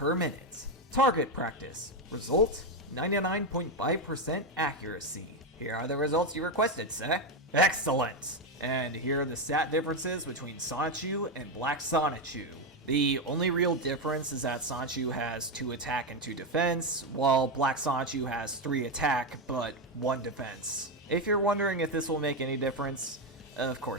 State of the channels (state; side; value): normal; both; correlation 0.08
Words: minute. Target practice. Result, 99.5% accuracy. Here are the results you requested, sir. Excellent! And here are the stat differences between Sonichu and Black Sonichu. The only real difference is that Sonichu has 2 attack and 2 defense, while Black Sonichu has 3 attack but 1 defense. If you're wondering if this will make any difference, of